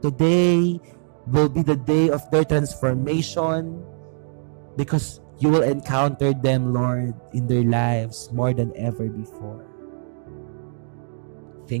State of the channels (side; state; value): left; silent; 59 dB below the other